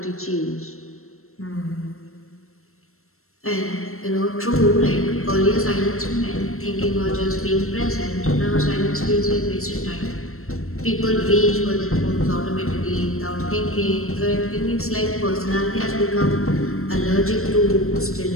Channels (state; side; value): late; right; 0.63 ms